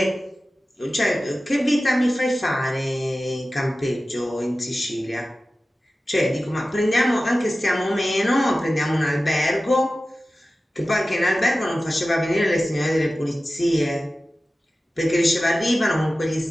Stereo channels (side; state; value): both; normal; correlation 0.95